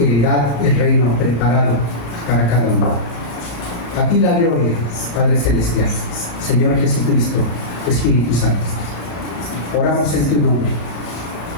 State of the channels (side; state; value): right; late; 35 ms